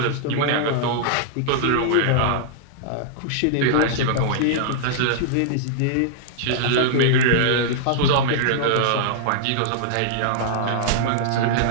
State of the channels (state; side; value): different; both; correlation -0.01